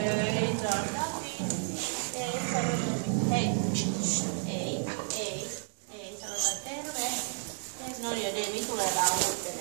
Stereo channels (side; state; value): left; silent; 57 dB below the other